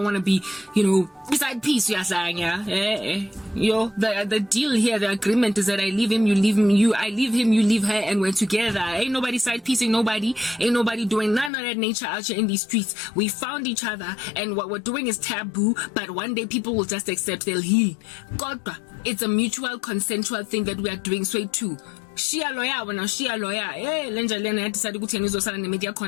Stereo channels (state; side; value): drops out; right; at 11.5 s